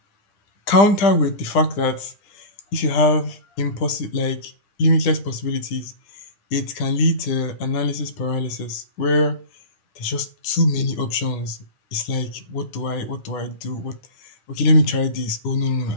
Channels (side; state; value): right; late; 9.9 ms